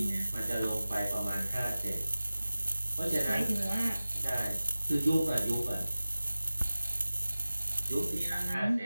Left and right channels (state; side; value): inverted; both; correlation -0.97